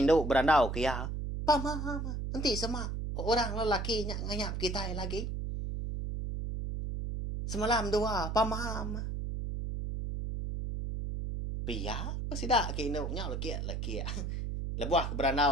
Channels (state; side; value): noise; right; hum, 3 dB below the sound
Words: induk berandau kia. Pama nanti semak orang lelaki nganyap kita lagi. Semalam dua pamam. Pia ko sida ke induk nya laki. Lebuah